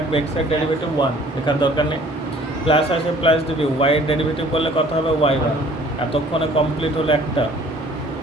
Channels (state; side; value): normal; both; correlation 0.54